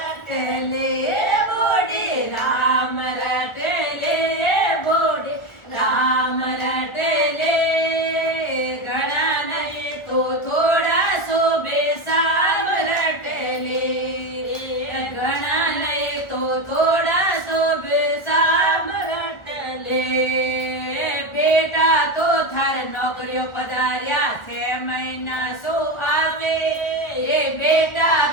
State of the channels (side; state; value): right; late; 1.4 ms